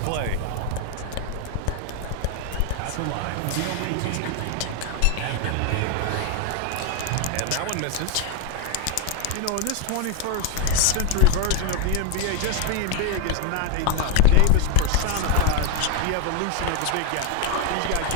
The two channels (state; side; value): different; both; correlation 0.01